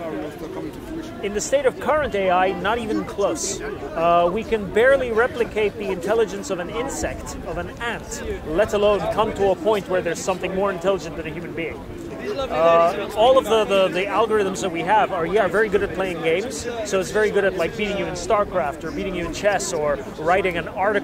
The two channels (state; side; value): identical; both; correlation 1.00